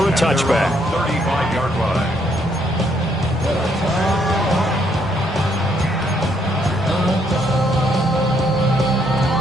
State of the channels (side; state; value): both; normal; correlation 0.71